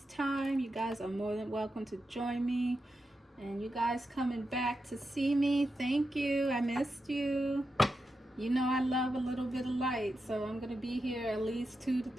time, you guys are more than welcome to join me. And you guys coming back to see me, thank you. I missed you. You know I love a little bit of light, so I'm going to be here at least 2 to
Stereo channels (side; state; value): both; normal; correlation 0.88